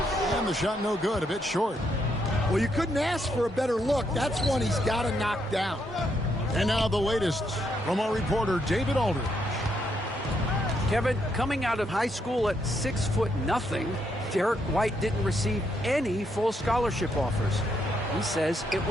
And the shot no good, a bit short. Well, you couldn't ask for a better look. That's one he's got to knock down. And now the latest from our reporter, David Aldridge. Kevin, coming out of high school at 6'0", Derek White didn't receive any full scholarship offers. He says it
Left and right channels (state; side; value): normal; both; correlation 0.77